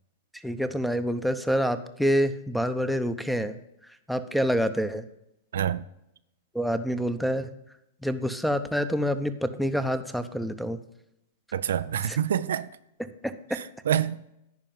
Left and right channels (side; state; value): both; normal; correlation 0.57